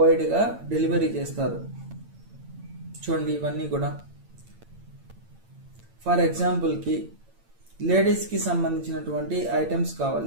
వైడ్గా డెలివరీ చేస్తారు. చూడండి ఇవన్నీ కూడా. ఫర్ ఎగ్జాంపుల్కి లేడీస్కి సంబంధించినటువంటి ఐటమ్స్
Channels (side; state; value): left; late; 8.8 ms